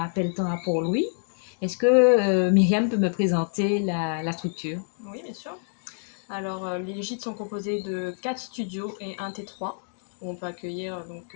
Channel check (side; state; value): right; silent; digital silence